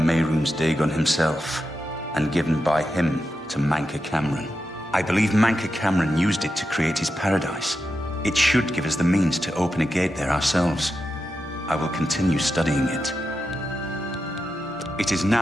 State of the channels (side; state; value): both; normal; correlation 0.88